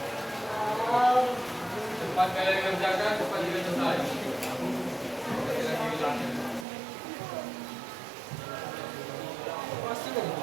Cepat kalian kerjakan, cepat juga selesai. Lagi bilangnya.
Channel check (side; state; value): left; drops out; at 6.7 s